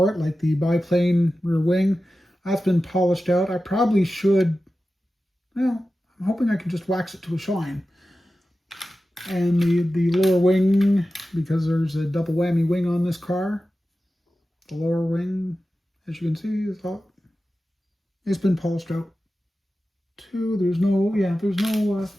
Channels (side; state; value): both; normal; correlation 0.94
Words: it, like the biplane rear wing, that's been polished out. I probably should, well, I'm hoping I can just wax it to a shine. And the lower wing, because there's a double whammy wing on this car, the lower wing, as you can see, it's been polished out too. There's no